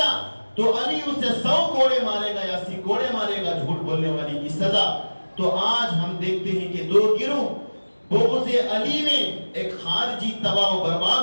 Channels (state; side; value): inverted; both; correlation -1.00